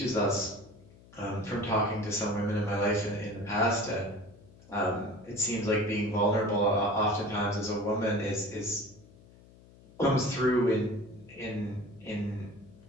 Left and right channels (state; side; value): noise; left; hum, 24 dB below the sound